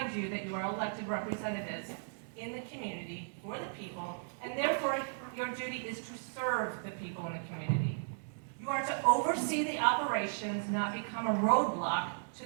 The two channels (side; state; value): left; silent; digital silence